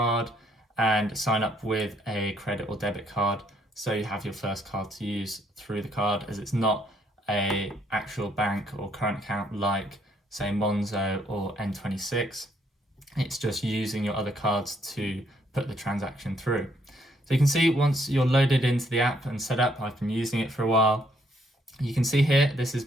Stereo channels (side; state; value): both; normal; correlation 0.70